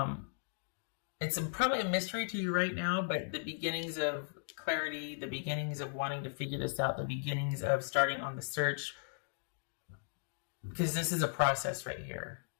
It's probably a mystery to you right now, but the beginnings of clarity, the beginnings of wanting to figure this out, the beginnings of starting on the search, because this is a process right here.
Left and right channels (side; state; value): right; silent; digital silence